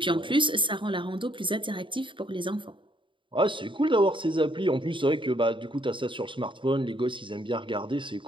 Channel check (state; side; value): late; left; 0.24 ms